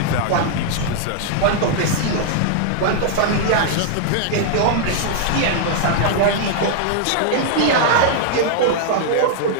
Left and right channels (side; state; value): both; different; correlation -0.01